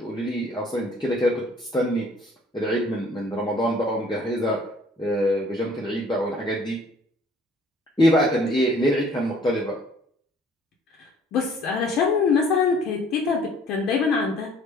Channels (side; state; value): both; normal; correlation 0.56